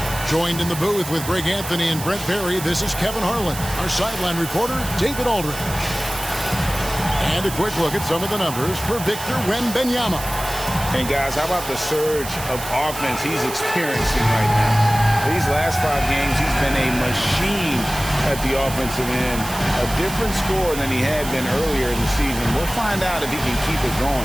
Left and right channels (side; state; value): right; noise; hiss, 10 dB below the sound